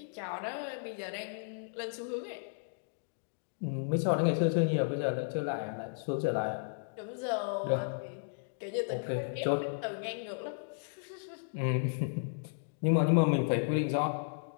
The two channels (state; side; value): silent; right; digital silence